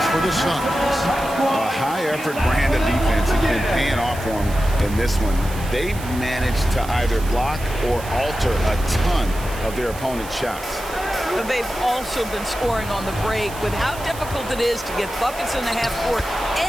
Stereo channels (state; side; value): noise; right; hiss, 15 dB below the sound